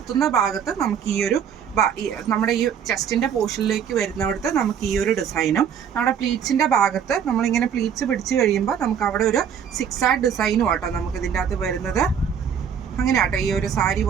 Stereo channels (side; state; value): left; quieter; 7.9 dB